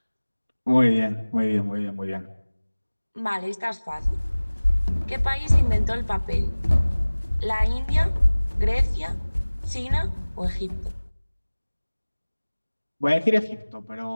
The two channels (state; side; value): inverted; both; correlation -1.00